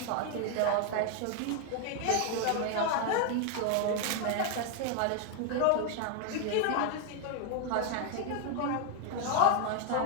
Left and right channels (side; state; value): both; different; correlation 0.01